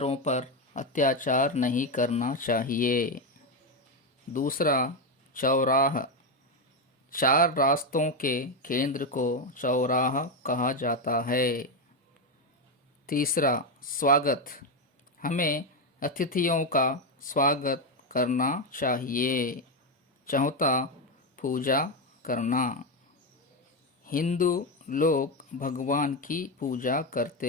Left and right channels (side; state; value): both; normal; correlation 0.08